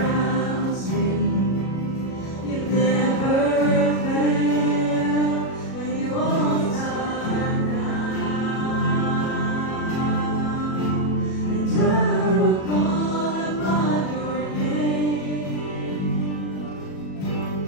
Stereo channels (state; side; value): late; right; 37 ms